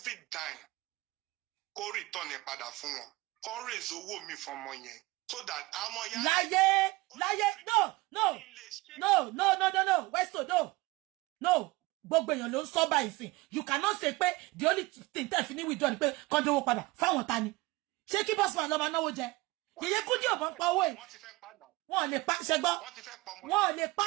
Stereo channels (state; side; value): quieter; left; 21.8 dB